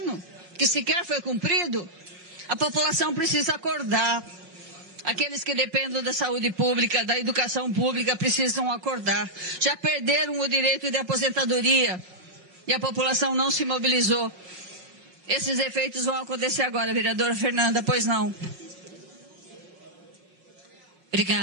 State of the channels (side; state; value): left; late; 5.4 ms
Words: que sequer foi cumprido? A população precisa acordar. Aqueles que dependem da saúde pública, da educação pública, precisam acordar. Já perderam o direito de aposentadoria e a população não se mobilizou. Esses efeitos vão acontecer agora, vereadora Fernanda, pois não?